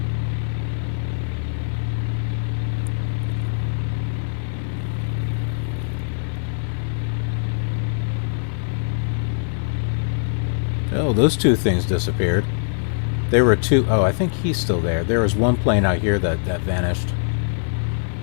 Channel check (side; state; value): right; silent; 64 dB below the other